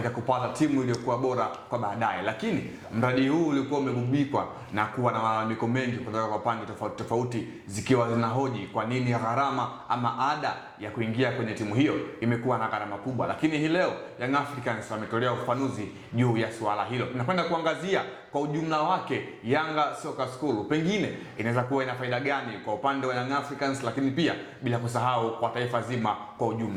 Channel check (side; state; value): both; identical; correlation 1.00